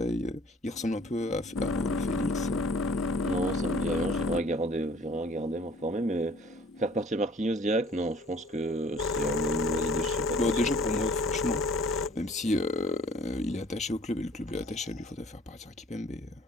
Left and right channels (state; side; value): normal; both; correlation 0.53